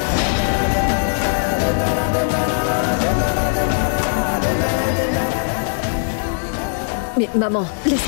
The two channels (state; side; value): silent; right; digital silence